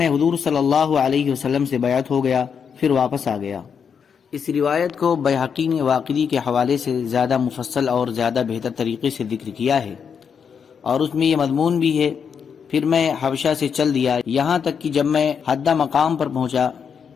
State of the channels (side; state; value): right; quieter; 6.8 dB